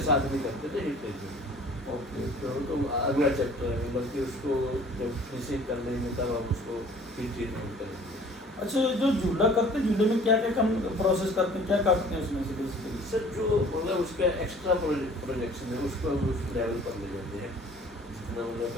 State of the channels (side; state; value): both; normal; correlation 0.50